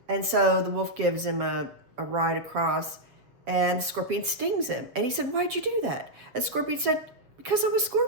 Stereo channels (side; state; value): left; late; 7.3 ms